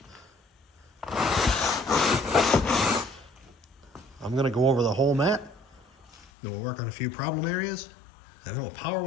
I'm going to go over the whole mat, then we'll work on a few problem areas, and then we'll power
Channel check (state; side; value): drops out; right; at 6.3 s